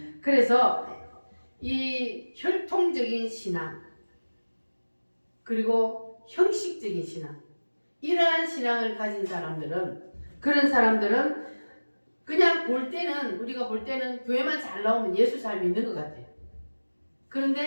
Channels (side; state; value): both; inverted; correlation -1.00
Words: 그래서 이 혈통적인 신앙 그리고 형식적인 신앙 이러한 신앙을 가진 사람들은 그런 사람들은 그냥 볼 때는 우리가 볼 때는 교회만 잘 나오면 예수 잘 믿는 것 같아요.